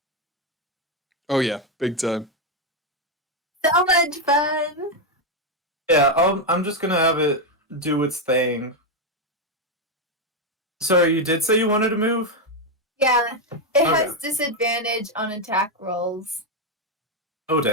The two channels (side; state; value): both; normal; correlation 0.04